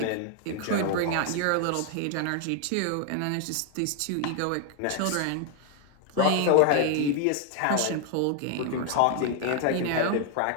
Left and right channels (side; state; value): both; different; correlation 0.00